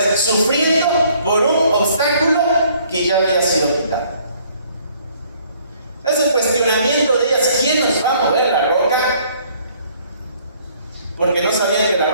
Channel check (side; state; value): both; inverted; correlation -0.61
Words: sufriendo por un obstáculo que ya había sido quitado. Es el cuestionamiento de ellas: ¿quién nos va a mover la roca? Porque no sabían que la